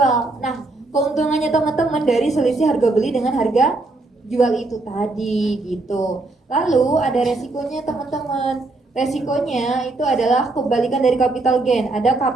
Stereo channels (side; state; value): left; quieter; 3.1 dB